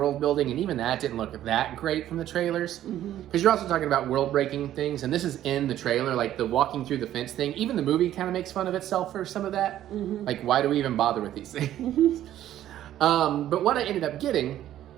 building, and even that didn't look that great from the trailers. Because you're also talking about world breaking things, and this is in the trailer, like the walking through the fence thing. Even the movie kind of makes fun of itself for some of that. Like, why do we even bother with these things? But what I ended up getting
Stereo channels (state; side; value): quieter; left; 12.3 dB